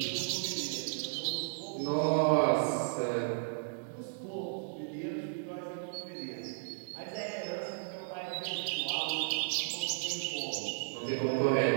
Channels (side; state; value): left; silent; digital silence